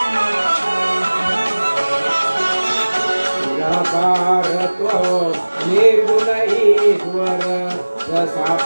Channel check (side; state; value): both; inverted; correlation -1.00